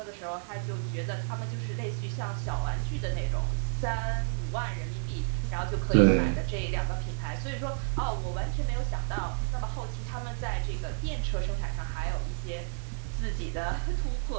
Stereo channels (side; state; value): left; silent; 57 dB below the other